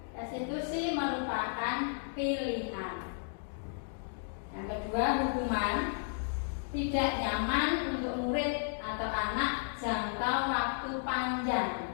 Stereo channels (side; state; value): right; silent; digital silence